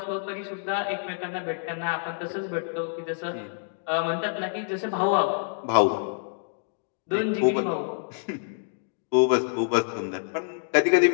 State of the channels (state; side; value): silent; right; digital silence